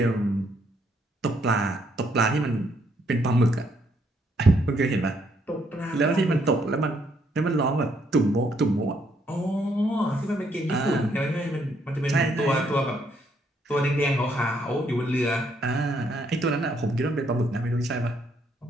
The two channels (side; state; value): both; normal; correlation 0.72